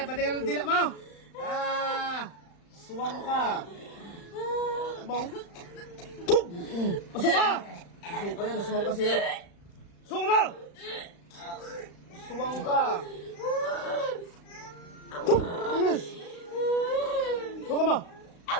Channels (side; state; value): right; late; 35 ms